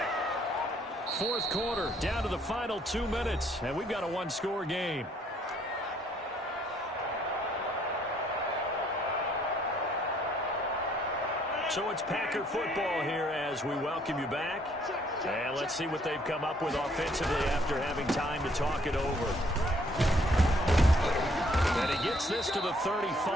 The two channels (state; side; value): normal; both; correlation 0.65